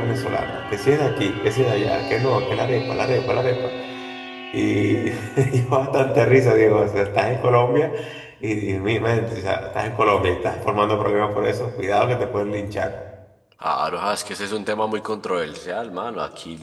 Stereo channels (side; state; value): both; identical; correlation 1.00